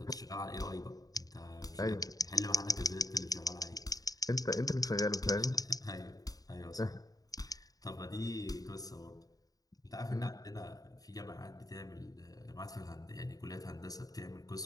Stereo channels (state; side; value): late; right; 0.18 ms